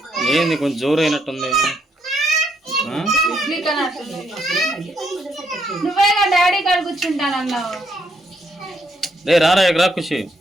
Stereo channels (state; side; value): normal; both; correlation 0.74